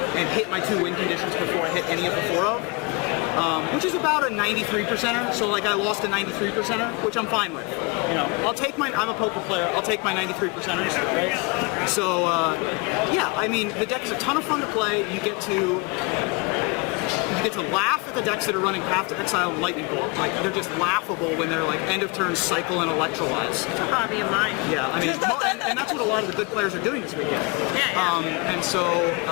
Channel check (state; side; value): quieter; right; 29.3 dB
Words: and hit my 2 win conditions before I hit any of the 4-of. Which is about a 93%er, so like I lost a 93%er, which I'm fine with. I'll take I'm a poker player, I'll take my 93%ers, right? So, yeah, I mean, the deck is a ton of fun to play. You get to laugh at the decks that are running Path to Exile and Lightning Bolt. Like, they're just laughable when they're like end of turn cycle and electrolyze. It's a hobby of mine. Yeah, I mean, and that's what a lot of the good players are doing this weekend. Yeah. And so